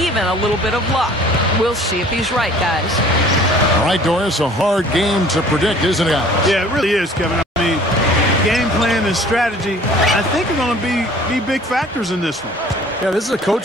a little bit of luck. We'll see if he's right, guys. All right, Doris, a hard game to predict, isn't it? Yeah, it really is, Kevin. I mean, game plan and strategy, I think, are going to be big factors in this one. Yeah, this is a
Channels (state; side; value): normal; both; correlation 0.51